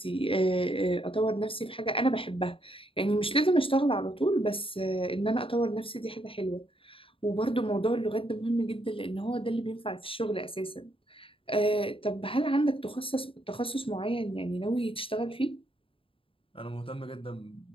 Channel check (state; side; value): late; right; 0.26 ms